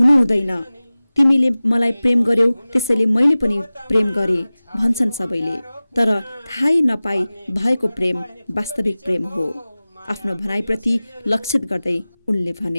हुँदैन। तिमीले मलाई प्रेम गर्यौ, त्यसैले मैले पनि प्रेम गरेँ भन्छन् सबैले, तर थाहै नपाई भएको प्रेम वास्तविक प्रेम हो। आफ्नो भनाइप्रति लक्षित गर्दै उनले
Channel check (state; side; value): inverted; both; correlation -0.97